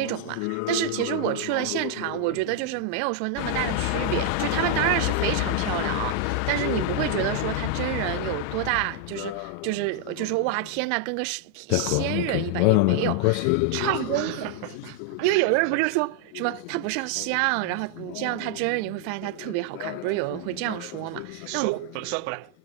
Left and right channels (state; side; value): different; both; correlation 0.00